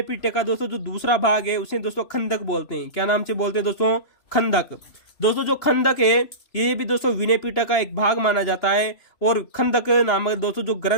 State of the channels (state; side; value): late; right; 3.0 ms